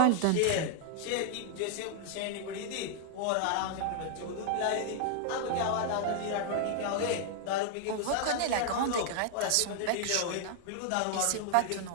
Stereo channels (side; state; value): both; different; correlation 0.00